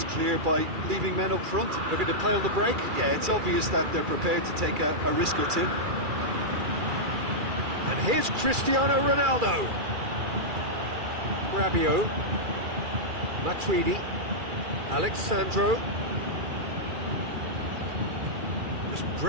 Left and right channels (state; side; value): late; left; 2.3 ms